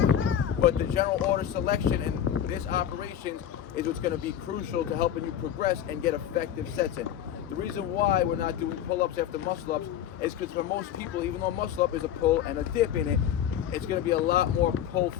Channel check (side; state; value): right; quieter; 10.1 dB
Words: But the general order selection and this operations is what's going to be crucial to helping you progress and get effective sets in. The reason why we're not doing pull-ups after muscle-ups is because for most people, even though muscle-up is a pull and a dip in it, it's going to be a lot more pull